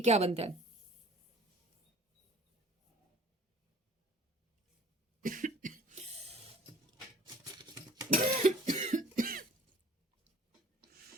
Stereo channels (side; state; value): both; normal; correlation 0.49